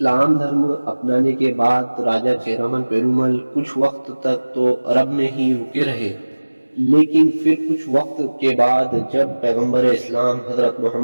धर्म अपनाने के बाद राजा चेरामन पेरुमल कुछ वक्त तक तो अरब में ही रुके रहे, लेकिन फिर कुछ वक्त के बाद जब पैगंबर इस्लाम हजरत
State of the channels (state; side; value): inverted; both; correlation -1.00